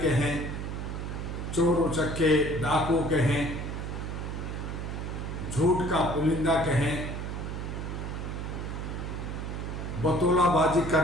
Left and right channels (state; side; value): noise; right; hum, 5 dB below the sound